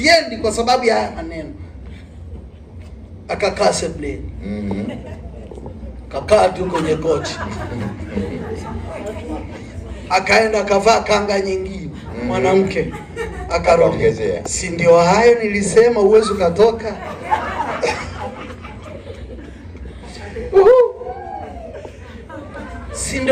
kwa sababu ya haya maneno. Akakaa sebuleni. Kakaa tu kwenye kochi. Akaenda akavaa kanga nyingine. Mwanamke akaongezea, si ndio hayo nilisema uwezi ukatoka? Si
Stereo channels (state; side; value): identical; both; correlation 1.00